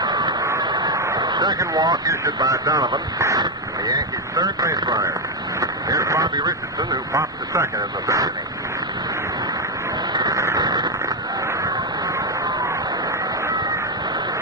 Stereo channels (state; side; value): normal; both; correlation 0.04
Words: Second walk issued by Donovan, the Yankees' third base runner. Here's Bobby Richardson, who popped to second in the 3rd inning.